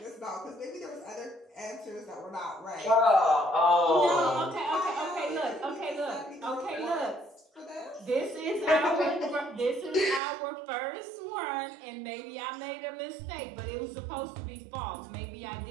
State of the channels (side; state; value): left; drops out; at 10.2 s